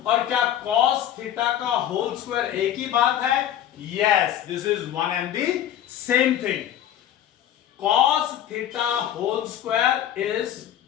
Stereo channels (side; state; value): right; quieter; 11.1 dB